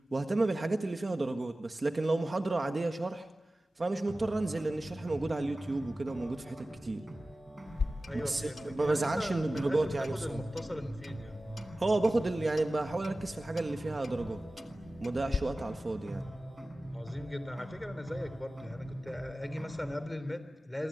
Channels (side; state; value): both; normal; correlation 0.96